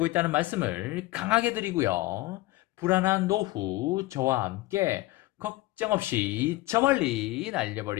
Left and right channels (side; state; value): right; quieter; 19.0 dB